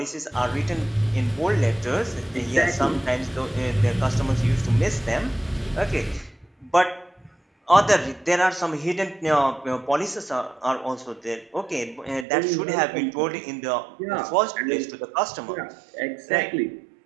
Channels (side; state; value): left; drops out; at 12.2 s